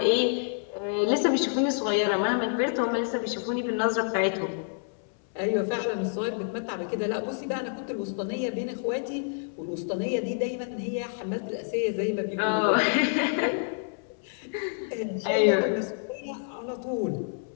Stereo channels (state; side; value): silent; right; 59 dB below the other